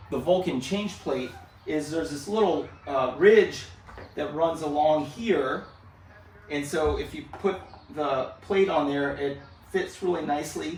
the Vulcan change plate is there's this little ridge that runs along here, and so if you put the plate on there, it fits really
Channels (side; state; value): both; identical; correlation 1.00